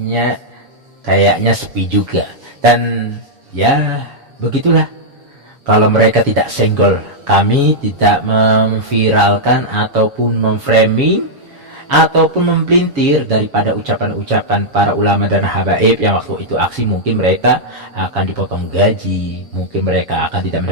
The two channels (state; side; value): late; left; 7.2 ms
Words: kayaknya sepi juga. Dan ya begitulah, kalau mereka tidak senggol, kami tidak memviralkan ataupun memframing ataupun mempelintir daripada ucapan-ucapan para ulama dan habaib yang waktu itu aksi. Mungkin mereka akan dipotong gaji, mungkin mereka akan tidak